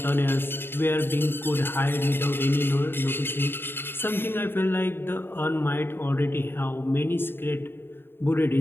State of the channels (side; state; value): right; late; 0.11 ms